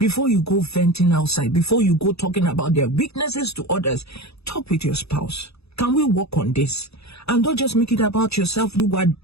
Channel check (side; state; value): right; late; 0.79 ms